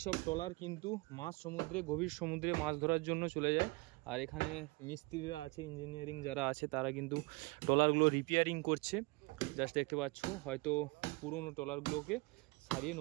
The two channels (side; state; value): left; quieter; 26.1 dB